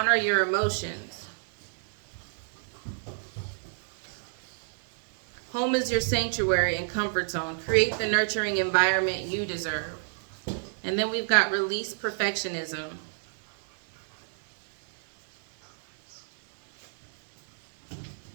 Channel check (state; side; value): silent; left; 59 dB below the other